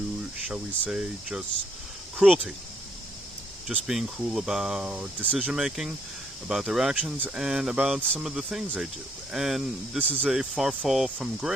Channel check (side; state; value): both; normal; correlation 0.70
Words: shall we say, just cruelty. Just being cruel about decision making, about their actions, and about some of the things they do. And this is a far fall from